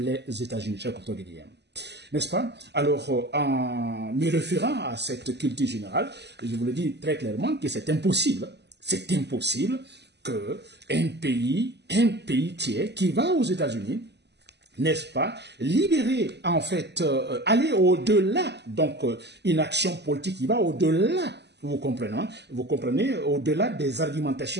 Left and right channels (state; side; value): late; left; 0.50 ms